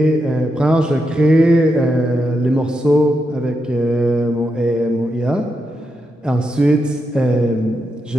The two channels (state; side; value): normal; both; correlation 0.84